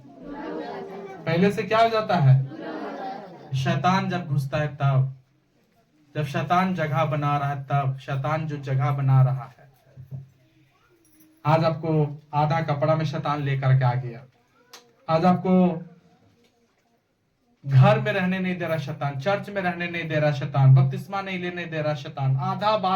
पहले से क्या हो जाता है? शैतान जब घुसता है तब, जब शैतान जगह बना रहा है तब, शैतान जो जगह बना रहा है। आज आपको आधा कपड़ा में शैतान लेकर के आ गया। आज आपको घर में रहने नहीं दे रहा शैतान, चर्च में रहने नहीं दे रहा शैतान, बपतिस्मा नहीं लेने दे रहा शैतान, आधा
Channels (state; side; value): identical; both; correlation 1.00